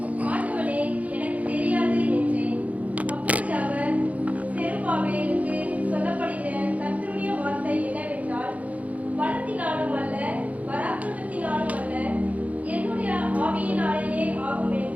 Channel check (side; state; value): left; late; 0.069 ms